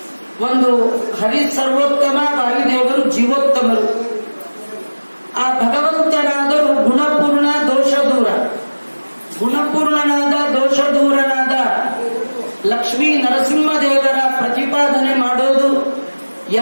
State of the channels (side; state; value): both; inverted; correlation -1.00